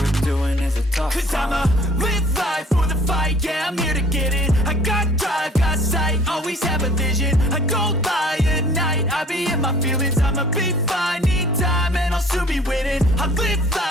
doing is a tough climb. Cause I'ma live life for the fight, yeah, I'm here to get it. I got drive, got sight, always have a vision. I don't lie at night, I be in my feelings. I'ma be fine, need time and I'll soon be winning. I live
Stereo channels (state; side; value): normal; both; correlation 0.52